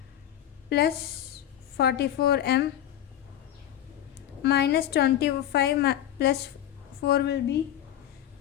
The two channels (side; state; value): right; quieter; 11.3 dB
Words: Plus 44m minus 25 plus 4 will be